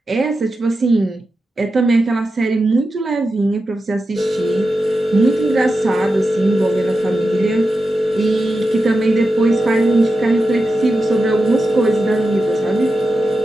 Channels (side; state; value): both; normal; correlation 0.91